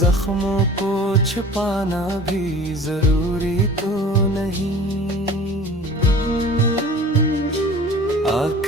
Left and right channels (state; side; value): normal; both; correlation 0.43